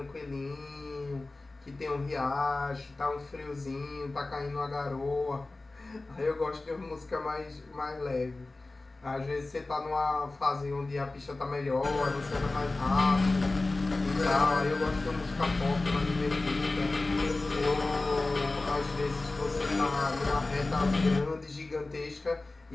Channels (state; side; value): quieter; right; 3.2 dB